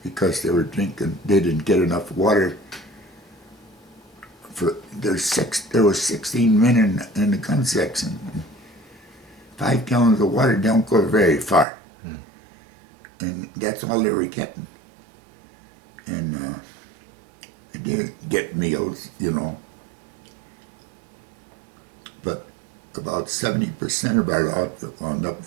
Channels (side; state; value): left; drops out; at 11.7 s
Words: because they were drinking, they didn't get enough water. There was 16 men in the gun section. 5 gallons of water don't go very far. And that's all they were getting. And they did get meals, you know. But about 70% of our outfit wound up